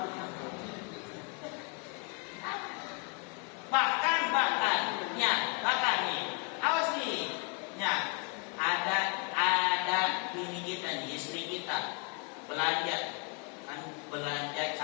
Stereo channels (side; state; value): right; quieter; 31.2 dB